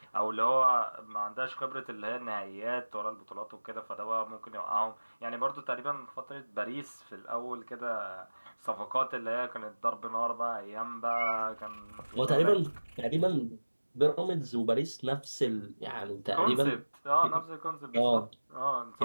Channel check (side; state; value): both; inverted; correlation -1.00